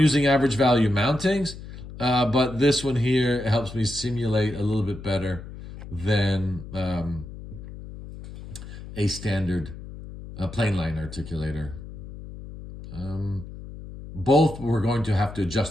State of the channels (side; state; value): left; noise; hum, 13 dB below the sound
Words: average value mountings. But this one here helps me simulate a little bit better than a standard plain line articulator. Both we're going to have to